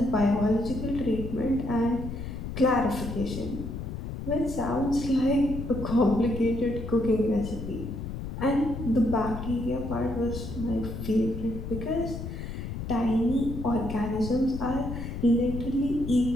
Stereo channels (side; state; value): left; noise; rumble, 7 dB below the sound